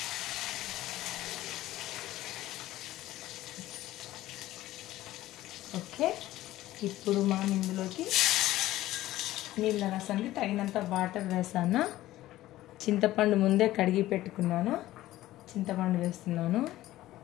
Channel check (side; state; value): right; quieter; 15.5 dB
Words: ఓకే, ఇప్పుడు మనం ఇందులోకి నీళ్ళ రసానికి తగినంత వాటర్ వేసాను. చింతపండు ముందే కడిగి పెట్టుకున్నాను, చింతపండు వేస్తున్నాను.